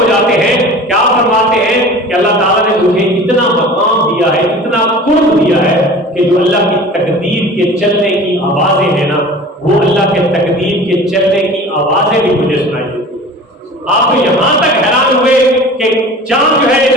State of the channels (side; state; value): both; normal; correlation 0.40